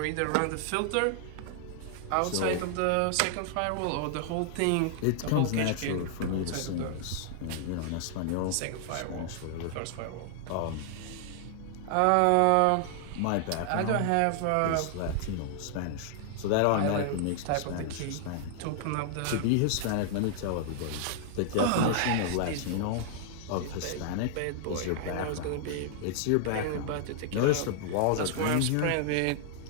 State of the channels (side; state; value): both; different; correlation 0.00